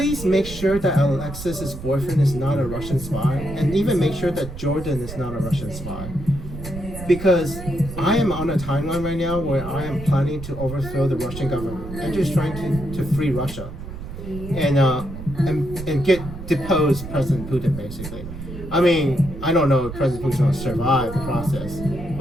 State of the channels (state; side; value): noise; right; rumble, 10 dB below the sound